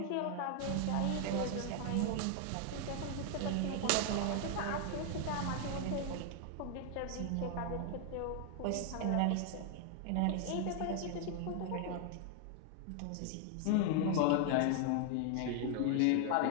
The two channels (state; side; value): different; both; correlation 0.00